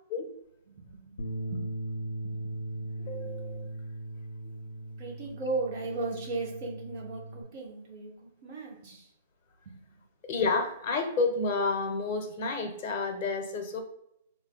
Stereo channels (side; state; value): both; inverted; correlation -0.31